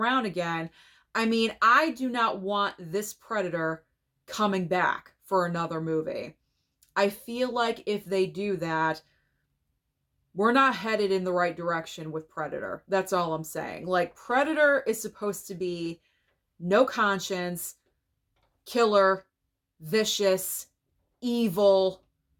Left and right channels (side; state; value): both; identical; correlation 1.00